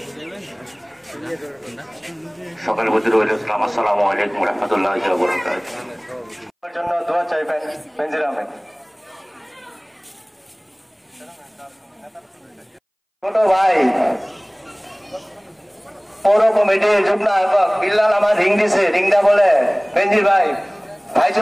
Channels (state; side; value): identical; both; correlation 1.00